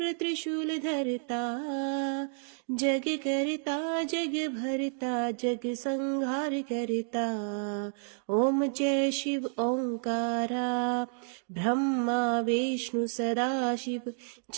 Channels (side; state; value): left; silent; digital silence